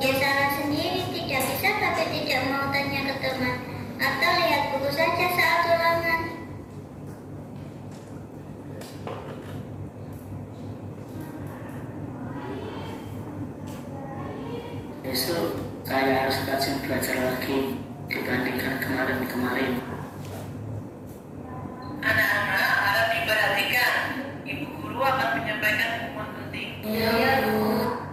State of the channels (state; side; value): identical; both; correlation 1.00